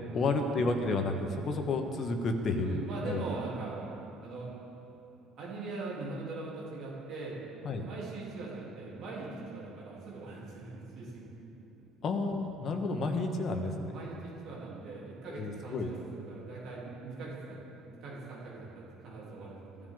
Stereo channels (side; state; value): both; normal; correlation 0.60